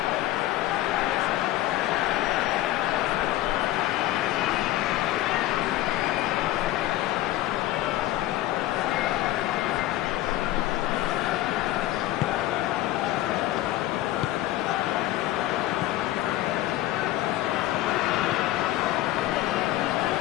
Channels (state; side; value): quieter; right; 15.4 dB